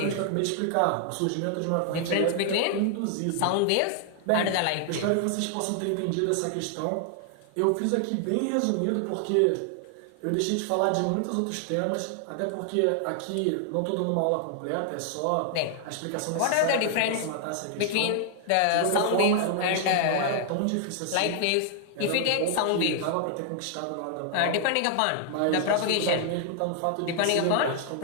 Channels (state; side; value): different; both; correlation 0.00